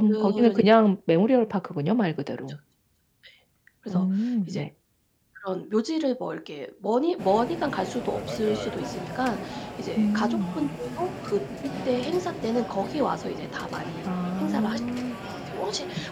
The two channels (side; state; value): both; identical; correlation 1.00